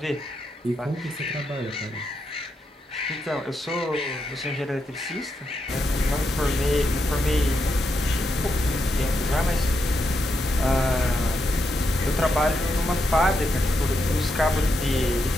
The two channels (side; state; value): both; normal; correlation 0.83